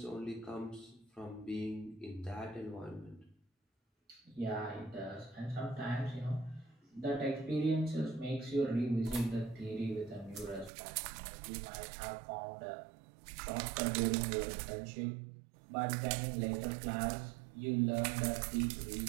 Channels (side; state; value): left; drops out; at 10.7 s